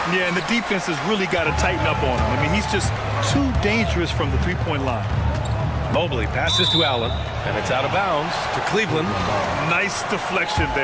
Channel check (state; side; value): identical; both; correlation 1.00